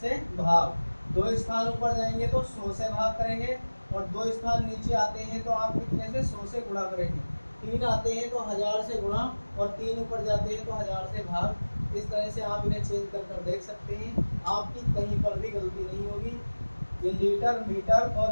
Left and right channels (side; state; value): both; inverted; correlation -1.00